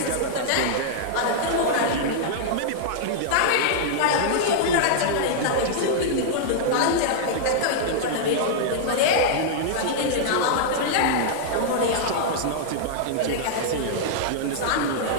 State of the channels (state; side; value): different; both; correlation -0.02